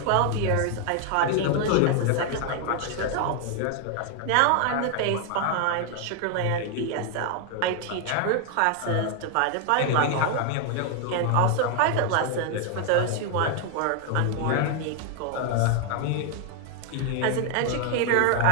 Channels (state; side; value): different; both; correlation 0.00